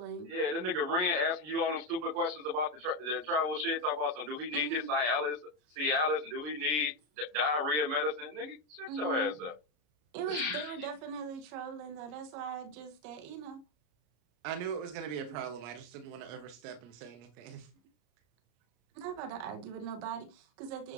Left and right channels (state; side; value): late; left; 33 ms